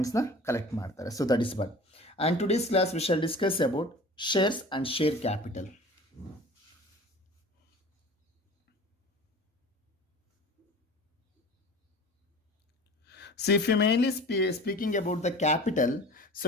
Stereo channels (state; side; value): normal; both; correlation 0.41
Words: ಕಲೆಕ್ಟ್ ಮಾಡ್ತಾರೆ. So that is but. And today's class we shall discuss about shares and share capital. So if you mainly speaking about the capital, so